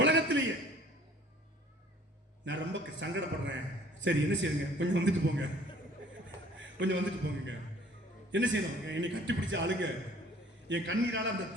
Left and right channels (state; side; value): normal; both; correlation 0.53